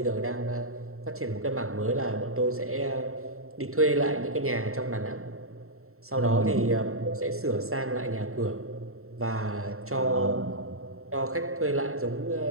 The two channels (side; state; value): left; late; 0.63 ms